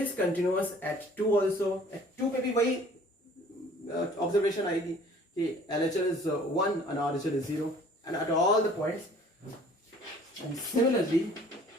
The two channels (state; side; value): normal; both; correlation 0.52